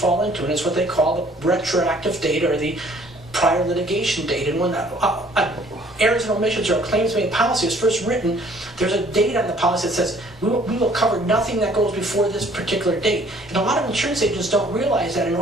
into, and it's what they call the retroactive date, or the prior litigation date. And when errors and omissions or a claims made policy is first written, there's a date on the policy that says we will cover nothing that goes before this particular date. And a lot of insurance agents don't realize that in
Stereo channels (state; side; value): normal; both; correlation 0.58